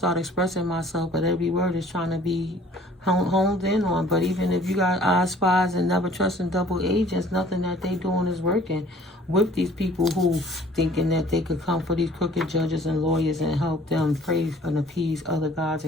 expressing myself, but every word is trying to be honed in on. But even if you got eye spies and never trusting double agents, nothing that they doing is working with these people who thinking that they could come for these crooked judges and lawyers and help them praise and appease other gods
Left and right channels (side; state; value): both; normal; correlation 0.53